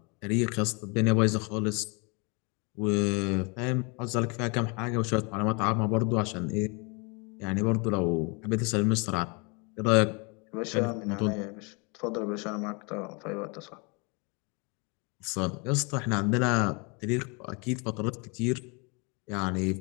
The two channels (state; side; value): quieter; right; 31.6 dB